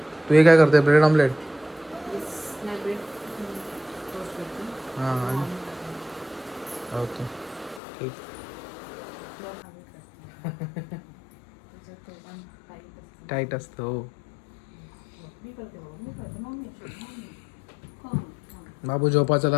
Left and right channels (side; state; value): right; drops out; at 7.8 s